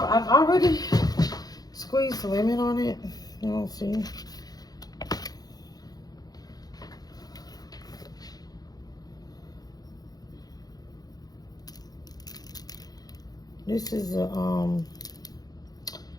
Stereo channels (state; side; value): late; right; 0.19 ms